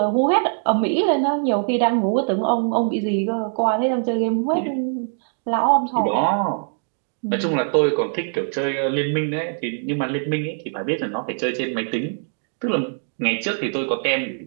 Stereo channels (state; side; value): silent; left; digital silence